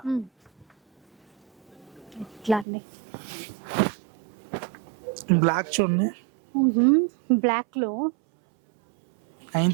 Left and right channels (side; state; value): left; drops out; at 2.7 s